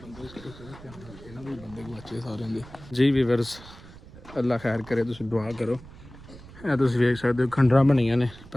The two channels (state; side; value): noise; right; rumble, 19 dB below the sound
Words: ਜੀ ਵੀਵਰਸ ਅੱਲਾ ਖੈਰ ਕਰੇ ਤੁਸੀਂ ਦੁਆ ਕਰੋ ਇਹ ਤੁਸੀਂ ਵੇਖ ਸਕਦੇ ਹੋ ਖੰਡਰਾਂ ਬਣੀਆਂ ਨੇ